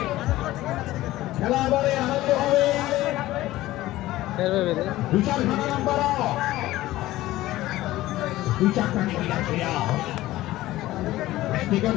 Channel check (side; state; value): right; quieter; 16.3 dB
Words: খেলা এবারে আরম্ভ হবে। 2-4 নম্বর 2-4টা টিকিট আছে। টিকিট